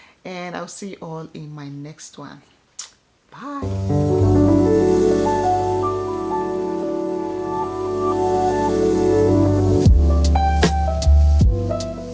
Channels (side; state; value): both; identical; correlation 1.00